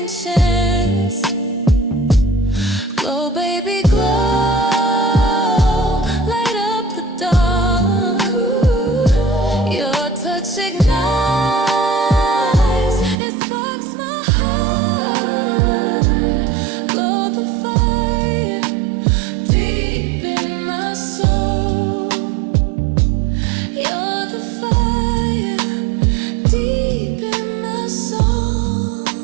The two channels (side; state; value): left; drops out; at 13.2 s